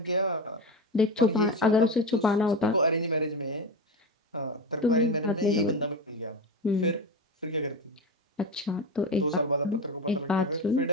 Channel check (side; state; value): both; normal; correlation 0.20